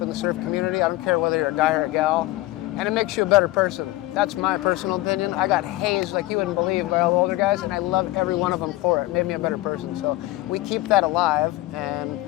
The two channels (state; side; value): quieter; right; 18.1 dB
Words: the surf community. I don't care whether you're a guy or a gal. And it makes you a better person. That's my personal opinion. I got hazed like you wouldn't believe by all the older guys, and I love every one of them for it. It made me a better person. So we keep that alive, and